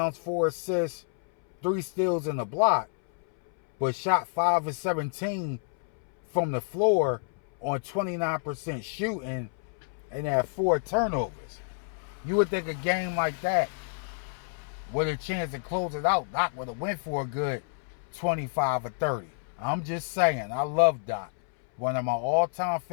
4 assists, 3 steals and a block, but shot 5 of 17 from the floor on 29% shooting and had 4 turnovers. You would think a game like that, with a chance to close it out, Doc would have went for a good 25 or 30. I'm just saying, I love Doc. One of my all-time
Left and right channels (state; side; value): silent; right; 59 dB below the other